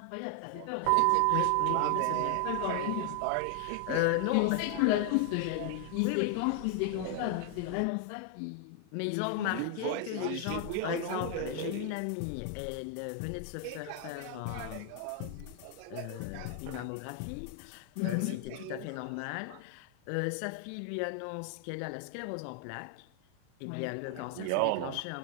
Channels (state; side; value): different; both; correlation 0.00